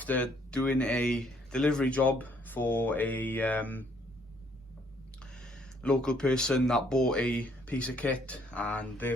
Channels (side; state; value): both; normal; correlation 0.66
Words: doing a delivery job for a local person that bought a piece of kit, and their